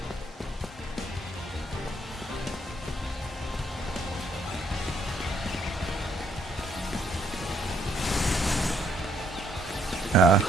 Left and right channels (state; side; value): normal; both; correlation 0.68